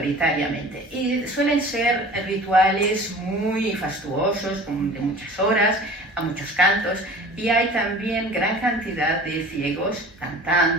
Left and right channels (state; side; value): normal; both; correlation 0.42